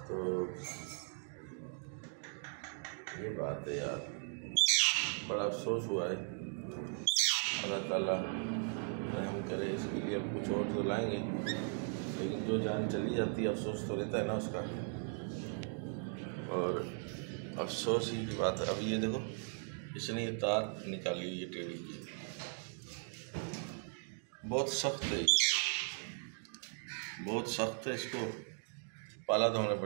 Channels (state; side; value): silent; left; 52 dB below the other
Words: तो ये बात है यार, बड़ा अफसोस हुआ है। अल्लाह ताला रहम करे इसके लिए। अब कुछ और तो लाएंगे, लेकिन जो जान चली जाती है अफसोस तो रहता है ना उसका, और अफसोस ही की बात है। अब ये देखो, इसने ये तार निकाली, ये टेढ़ी की, बहुत सख्त है, बहुत सख्त है। इसको पाला तो हमने